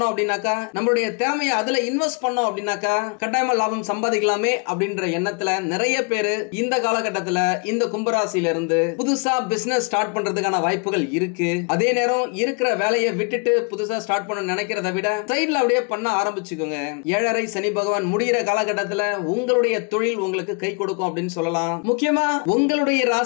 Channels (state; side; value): quieter; right; 35.3 dB